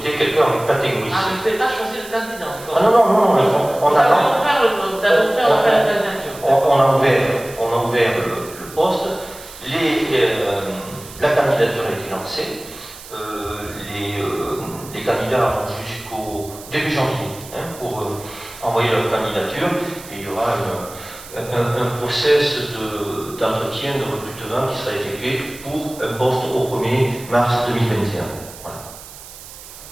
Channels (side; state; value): right; noise; hiss, 16 dB below the sound